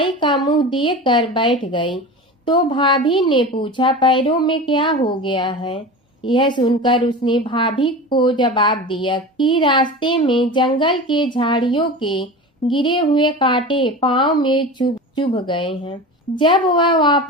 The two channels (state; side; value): normal; both; correlation 0.31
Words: का मुंह देखकर बैठ गई तो भाभी ने पूछा, पैरों में क्या हो गया है? यह सुनकर उसने भाभी को जवाब दिया कि रास्ते में जंगल के झाड़ियों के गिरे हुए कांटे पांव में चुभ गए हैं। जब वह